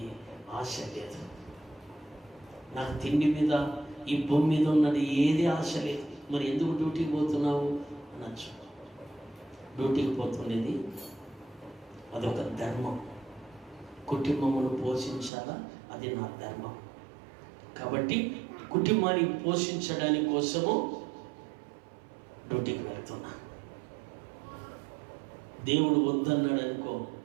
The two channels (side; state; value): left; drops out; at 15.3 s